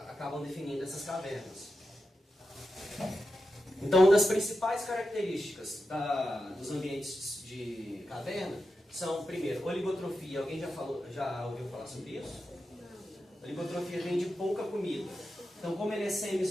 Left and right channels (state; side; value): normal; both; correlation 0.90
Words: definindo essas cavernas. Então, uma das principais características dos ambientes de caverna são, primeiro, oligotrofia. Alguém já ouviu falar sobre isso? Oligotrofia vem de pouca comida. Então, como ele é